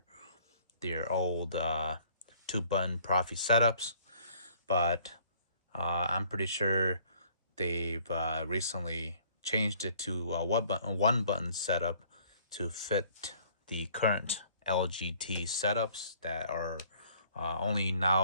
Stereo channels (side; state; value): both; inverted; correlation -0.58